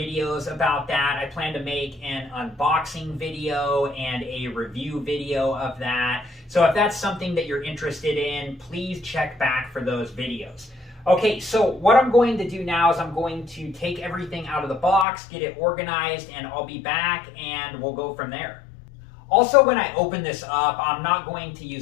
about that. I plan to make an unboxing video and a review video of that. So if that's something that you're interested in, please check back for those videos. Okay, so what I'm going to do now is I'm going to take everything out of the box, get it organized, and I'll be back and we'll go from there. Also, when I open this up, I'm not going to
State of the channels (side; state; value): right; drops out; at 15.1 s